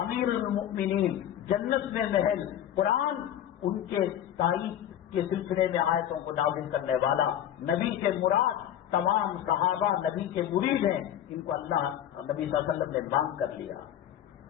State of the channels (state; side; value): quieter; right; 10.9 dB